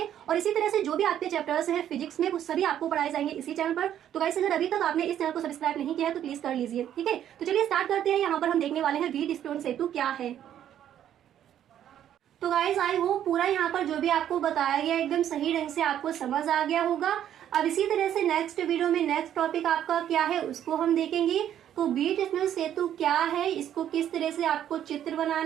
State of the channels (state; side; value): quieter; left; 10.6 dB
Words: और इसी तरह से जो भी आपके चैप्टर्स है फिजिक्स में वो सभी आपको पढ़ाए जाएंगे इसी चैनल पर। तो गाइस अगर अभी तक आपने इस चैनल को सब्सक्राइब नहीं किया है तो प्लीज कर लीजिए। ठीक है, तो चलिए स्टार्ट करते हैं। यहाँ पर हम देखने वाले हैं व्हीटस्टोन सेतु क्या है। तो गाइस आई होप पूरा यहाँ पर जो भी आपको बताया गया एकदम सही ढंग से आपको समझ आ गया होगा। अब इसी तरह से नेक्स्ट वीडियो में नेक्स्ट टॉपिक आपका क्या है उसको हम देखेंगे। तो व्हीटस्टोन सेतु क्या है, इसको किस तरह से आपको चित्र